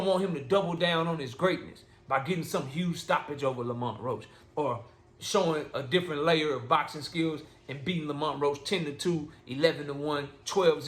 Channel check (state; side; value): identical; both; correlation 1.00